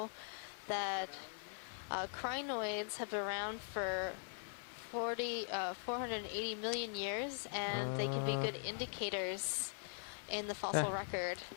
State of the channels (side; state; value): right; silent; digital silence